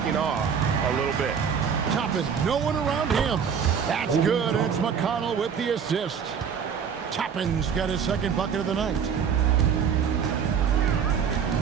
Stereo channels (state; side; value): quieter; left; 7.1 dB